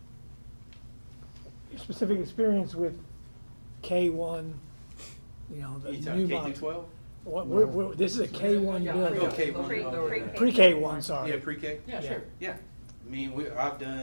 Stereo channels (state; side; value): inverted; both; correlation -1.00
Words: Your specific experience with K1, you know, the You new talking K model. through 12? What, this is a K1 building. Oh, K1. Pre-K1, sorry. Yeah, pre-K? Yeah, sure. Yeah. I mean, I've